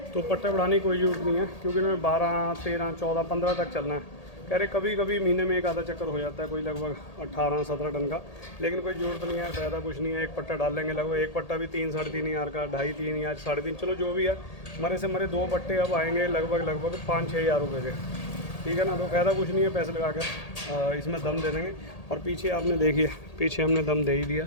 तो पट्टा बढ़ाने की कोई ज़रूरत नहीं है क्योंकि इन्होंने 12, 13, 14, 15 तक चलना है। कह रहे कभी कभी महीने में एक आधा चक्कर हो जाता है, कोई लगभग 18, 17 टन का, लेकिन कोई ज़रूरत नहीं है, फ़ायदा कुछ नहीं है। एक पट्टा डाल लेंगे, लगभग एक पट्टा भी 3, 3.5 हज़ार का, 2.5, 3 या 3.5, चलो जो भी है। मरे से मरे 2 पट्टे अब आएंगे लगभग 5-6 हज़ार रुपये के, ठीक है ना। तो फ़ायदा कुछ नहीं है, पैसे लगा कर इसमें दम दे देंगे। और पीछे आपने देखिए, पीछे हमने दम दे ही दिया।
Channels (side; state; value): right; late; 1.8 ms